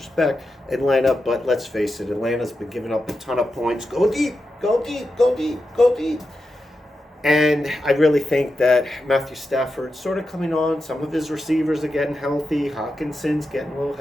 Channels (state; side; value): normal; both; correlation 0.89